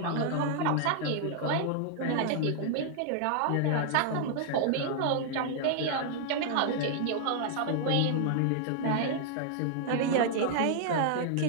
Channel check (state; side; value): different; both; correlation 0.00